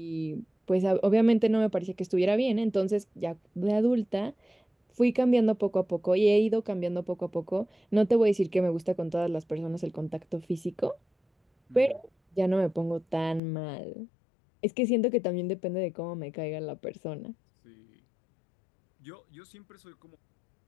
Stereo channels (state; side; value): drops out; right; at 13.4 s